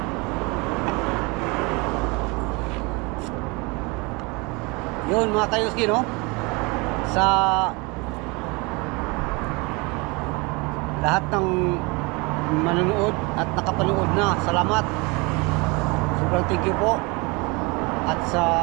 Yun mga kayuski, no? Sa lahat ng manonood at nakapanood na, salamat. Sobrang thank you po. At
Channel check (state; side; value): quieter; left; 27.4 dB